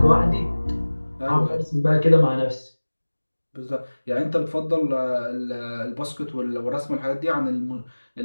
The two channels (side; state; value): both; inverted; correlation -1.00